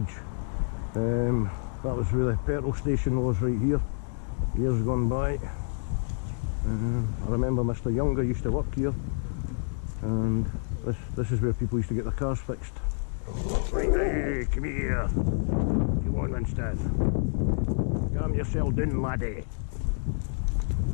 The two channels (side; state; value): right; silent; 59 dB below the other